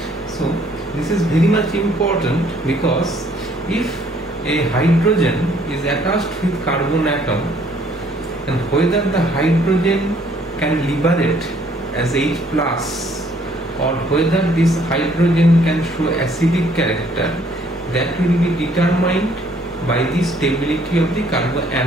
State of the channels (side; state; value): both; normal; correlation 0.63